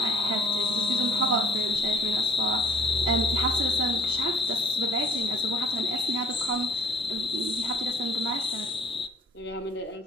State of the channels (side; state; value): both; normal; correlation 0.55